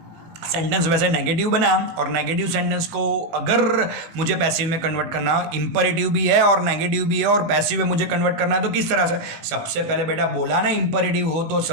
सेंटेंस वैसे नेगेटिव बना, और नेगेटिव सेंटेंस को अगर मुझे पैसिव में कन्वर्ट करना, इंपरेटिव भी है और नेगेटिव भी है और पैसिव में मुझे कन्वर्ट करना है, तो किस तरह से, सबसे पहले बेटा बोला ना इंपरेटिव हो तो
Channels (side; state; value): left; late; 18 ms